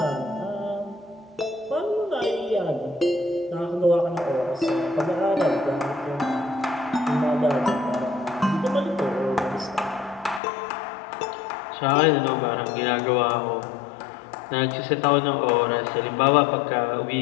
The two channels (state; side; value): drops out; right; at 10.4 s